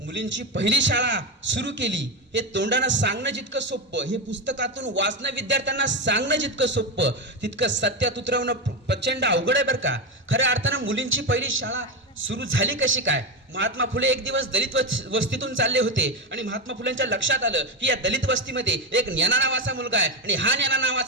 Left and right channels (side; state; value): both; normal; correlation 0.12